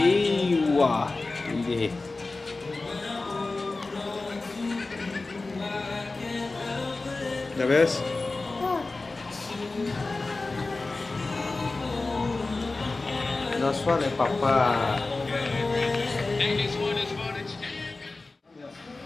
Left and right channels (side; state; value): right; quieter; 3.4 dB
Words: wow, đi. The best. That's what Papa.